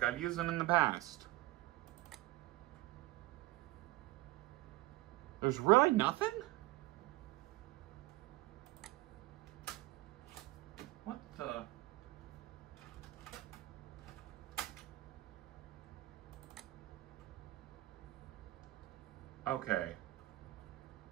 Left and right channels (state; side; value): quieter; left; 18.5 dB